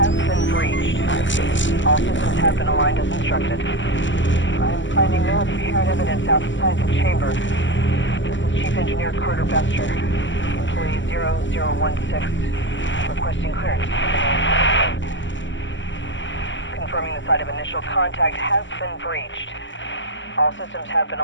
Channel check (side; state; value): right; late; 0.54 ms